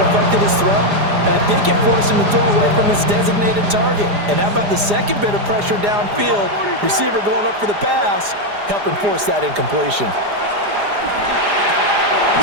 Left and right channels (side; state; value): left; late; 4.9 ms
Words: his throw, and I think it forced him to throw away from his designated target. And how about the second bit of pressure downfield? Receiver going up for the pass, helping force that incompletion.